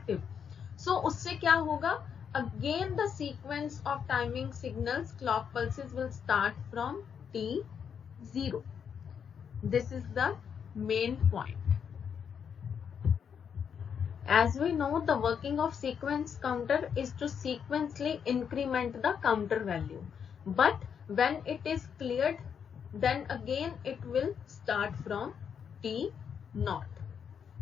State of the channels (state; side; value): quieter; right; 7.4 dB